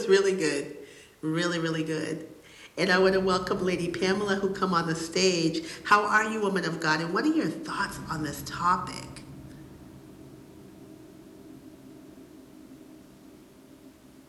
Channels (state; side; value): identical; both; correlation 1.00